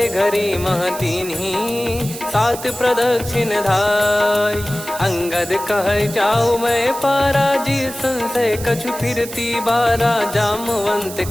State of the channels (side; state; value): right; noise; hiss, 12 dB below the sound